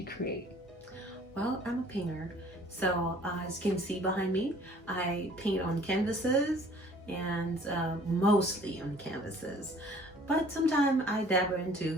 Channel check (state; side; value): normal; both; correlation 0.54